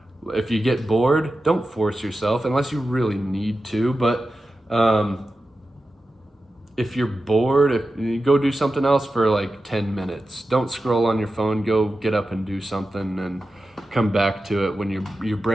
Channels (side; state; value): both; normal; correlation 0.93